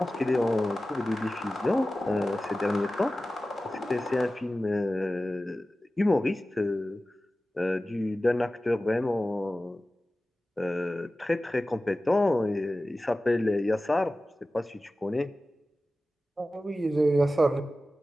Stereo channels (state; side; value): normal; both; correlation 0.95